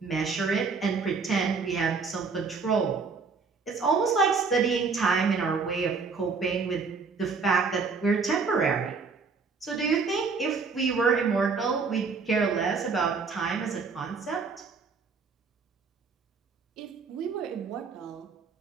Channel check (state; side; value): quieter; left; 4.9 dB